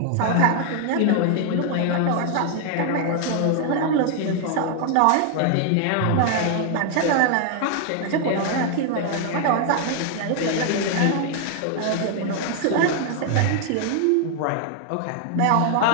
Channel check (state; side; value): different; both; correlation 0.00